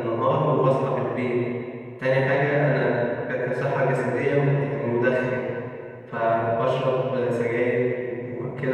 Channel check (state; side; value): identical; both; correlation 1.00